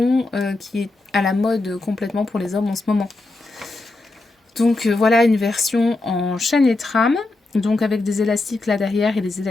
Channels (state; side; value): quieter; right; 3.1 dB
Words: qui est à la mode complètement pour les hommes en ce moment. Donc voilà une version en chaînette rame, donc avec des élastiques là derrière et des